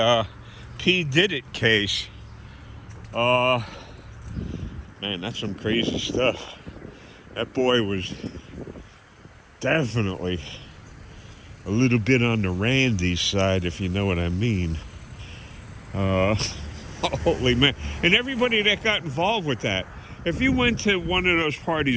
P. Diddy case. Man, that's some crazy stuff. That boy was definitely a little bit on the Randy side, if you know what I mean. Holy man. And everybody that got involved with that. If you went to one of those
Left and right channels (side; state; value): both; identical; correlation 1.00